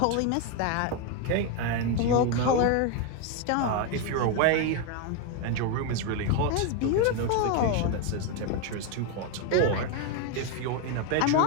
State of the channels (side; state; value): both; different; correlation 0.02